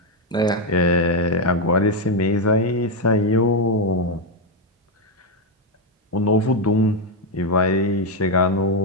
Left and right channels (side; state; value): both; normal; correlation 0.04